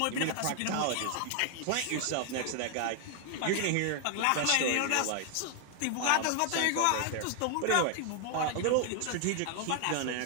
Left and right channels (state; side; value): different; both; correlation 0.00